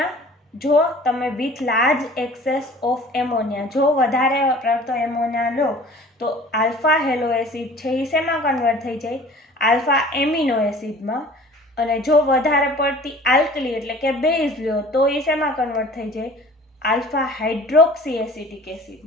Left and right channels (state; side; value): normal; both; correlation 0.46